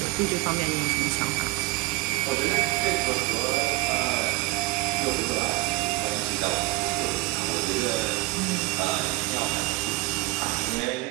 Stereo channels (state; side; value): quieter; left; 21.0 dB